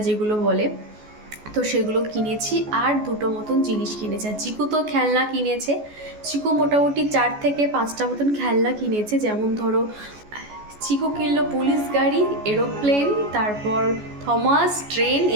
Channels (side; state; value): left; late; 14 ms